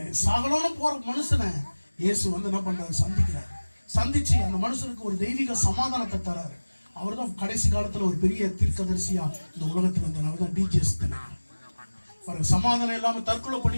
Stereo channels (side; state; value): both; inverted; correlation -1.00